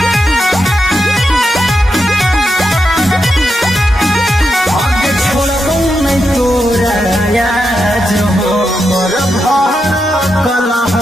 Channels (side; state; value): both; normal; correlation 0.85